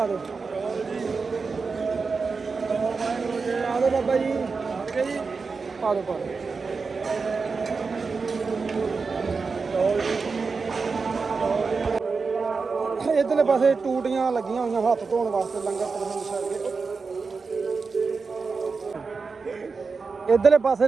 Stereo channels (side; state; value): left; quieter; 4.7 dB